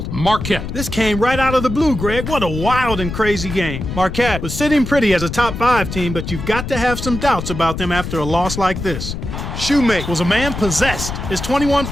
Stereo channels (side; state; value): left; noise; rumble, 6 dB below the sound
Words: Marquette. This came right out of the blue, Greg. What a wild and crazy game. Marquette was sitting pretty as a top 5 team, but you've got to have some doubts about them after a loss like this. Shoemake was a man possessed. His 21